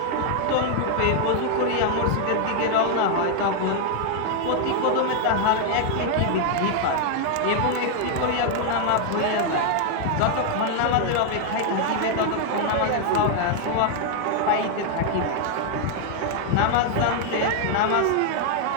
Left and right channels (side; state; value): both; different; correlation 0.00